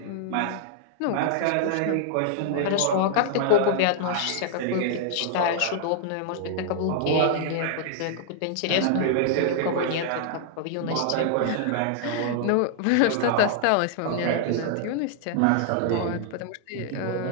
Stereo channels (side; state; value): both; different; correlation -0.01